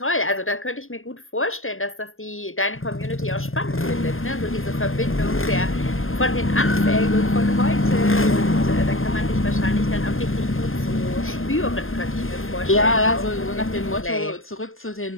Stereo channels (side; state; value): right; late; 0.60 ms